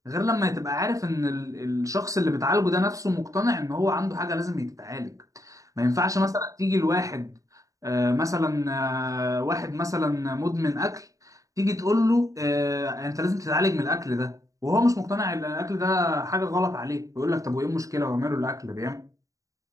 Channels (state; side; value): late; left; 0.16 ms